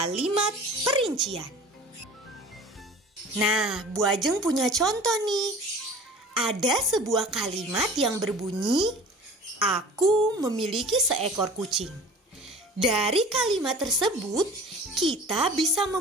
perincian. Nah, Bu Ajeng punya contoh nih. Ada sebuah kalimat yang berbunyi, "Aku memiliki seekor kucing." Dari kalimat tersebut, kita bisa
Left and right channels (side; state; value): both; normal; correlation 0.42